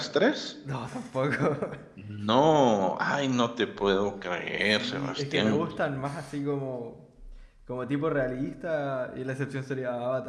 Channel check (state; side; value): identical; both; correlation 1.00